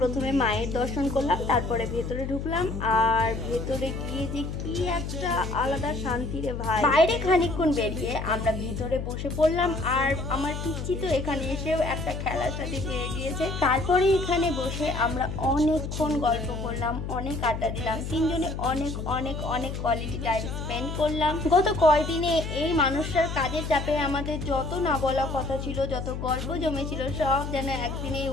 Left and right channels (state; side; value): noise; left; hum, 5 dB below the sound